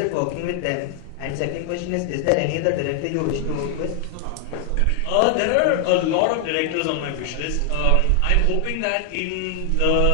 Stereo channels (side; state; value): both; different; correlation 0.00